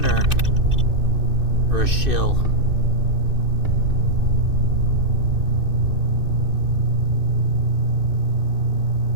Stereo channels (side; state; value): left; late; 2.6 ms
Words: or a shill?